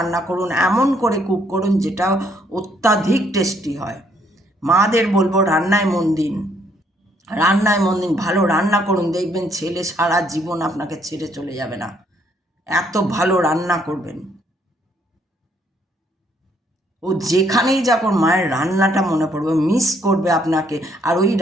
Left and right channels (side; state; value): both; normal; correlation 0.69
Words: করুন, এমন করে কুক করুন যেটা অত্যাধিক টেস্টি হয়। মাদের বলবো রান্নায় মন দিন, রান্নায় মন দিন, ভালো রান্না করুন, দেখবেন ছেলে সারা জীবন আপনাকে ছেড়ে চলে যাবে না, এত ভালো রান্না করবেন। ও যেখানেই যাক ওর মায়ের রান্নাটা মনে পড়বে, মিস করবে আপনাকে, আর ওই